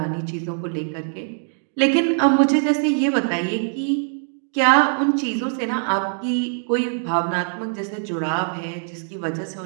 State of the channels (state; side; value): silent; left; digital silence